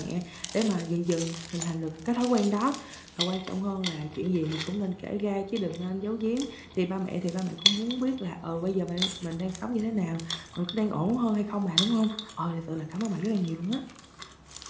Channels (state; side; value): identical; both; correlation 1.00